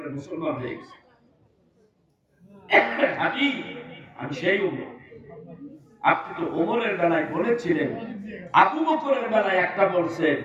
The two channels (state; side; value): identical; both; correlation 1.00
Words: মুসলমান হয়ে গেছেন। হাবিব, আমি সেই উম্মত। আপনি তো ওমরের বেলায় বলেছিলেন, আবু বকরের বেলায় একটা বলছেন